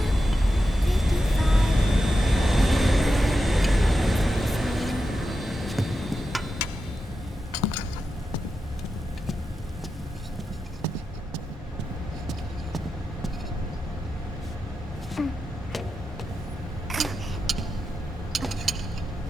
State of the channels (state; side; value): normal; both; correlation 0.89